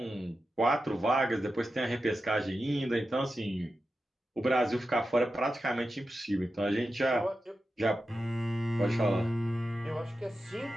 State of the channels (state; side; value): normal; both; correlation 0.91